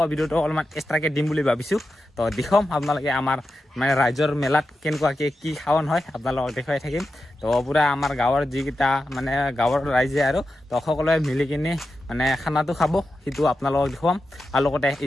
ভিডিঅ'টো অলপমান এক্সট্ৰাকে দিম বুলি ভাবিছো তো দেখম আপোনালোকে আমাৰ মানে ৰাইজৰ মেলাত কেনেকুৱাকে কি খাৱন হয় আপোনালোকক দেখুৱাই থাকিম তো পুৰা আমাৰ গাঁৱৰ যিকেইটা মানে গাঁৱৰ ৰাইজে আৰু তো সকলোৱে মিলি কিনে মানে খানাটো খাব সেইটো আপোনালোকক দেখুৱাম আৰু লগতে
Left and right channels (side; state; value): both; normal; correlation 0.90